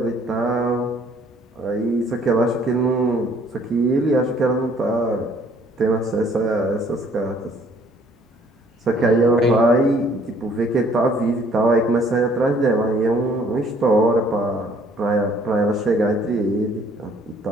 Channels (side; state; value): both; normal; correlation 0.60